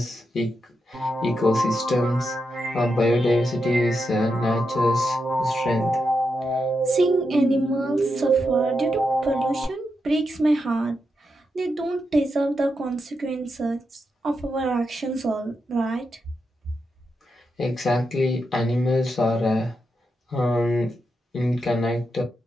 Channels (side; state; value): both; normal; correlation 0.86